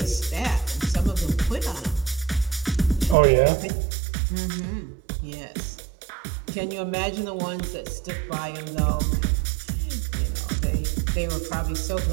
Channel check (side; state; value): left; drops out; at 3.2 s